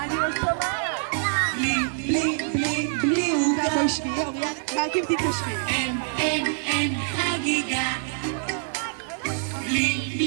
לא שומעת. בלי עוגה. בואי שנייה, רק אם תתיישבי. אין חגיגה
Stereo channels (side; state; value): left; silent; 62 dB below the other